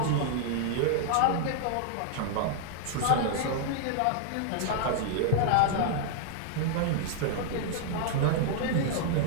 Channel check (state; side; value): different; both; correlation 0.00